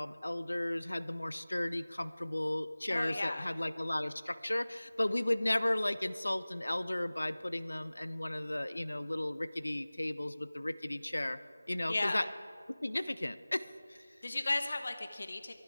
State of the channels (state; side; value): inverted; both; correlation -0.99